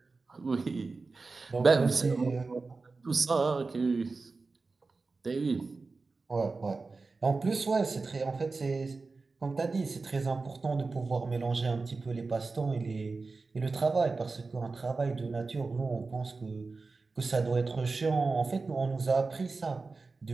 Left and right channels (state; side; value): quieter; left; 3.9 dB